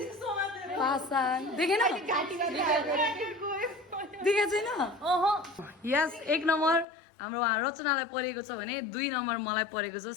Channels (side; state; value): right; drops out; at 6.9 s